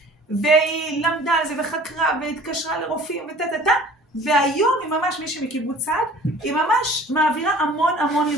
והיא למדה על זה וחקרה והתקשרה לרופאים והיום היא ממש מישהי מקיבוץ צעד, היא ממש מעבירה המון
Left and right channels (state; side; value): normal; both; correlation 0.48